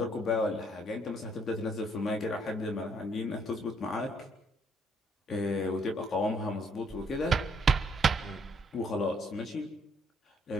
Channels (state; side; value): normal; both; correlation 0.68